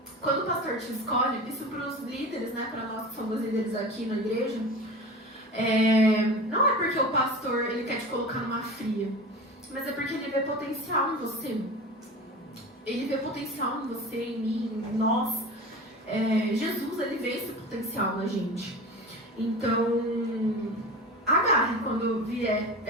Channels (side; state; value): both; normal; correlation 0.32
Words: Quando o pastor te escolhe, isso pros líderes, né, pra nós que somos líderes aqui na igreja, não é porque o pastor, ele quer te colocar numa fria, mas é porque ele vê potencial em você. Ele vê potencial em você, em mim, em nós. Jesus, ele vê esse potencial na gente. Então, agarre quando vier